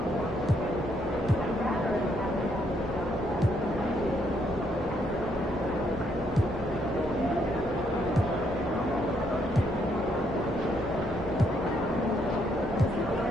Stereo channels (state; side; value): normal; both; correlation 0.73